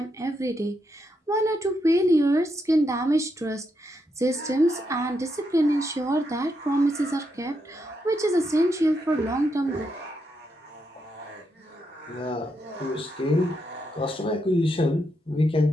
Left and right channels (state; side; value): normal; both; correlation 0.81